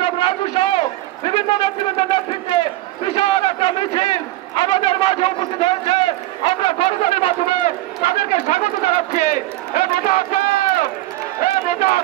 রাজু সহ বিভিন্ন নেতৃত্বের নেতৃত্বে বিশাল একটা মিছিল আমাদের মাঝে উপস্থিত হয়েছে। আমরা করজনের মাধ্যমে তাদেরকে স্বাগত জানাচ্ছি। নেতা আছে, নেতা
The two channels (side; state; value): left; quieter; 17.1 dB